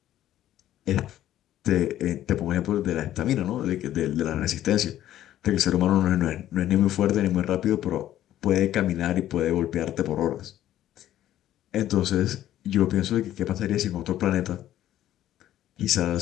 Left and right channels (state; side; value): quieter; right; 12.7 dB